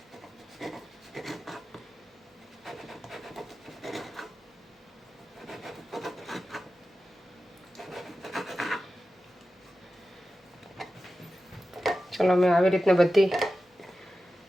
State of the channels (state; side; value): normal; both; correlation 0.93